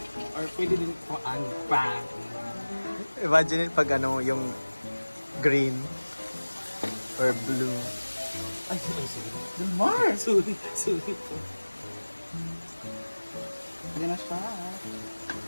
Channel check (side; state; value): both; inverted; correlation -1.00